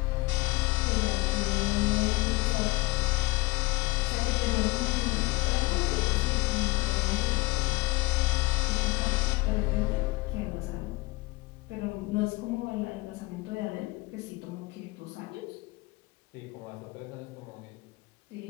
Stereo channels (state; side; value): quieter; right; 22.9 dB